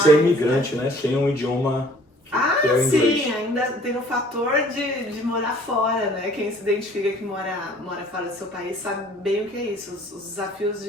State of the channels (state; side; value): normal; both; correlation 0.54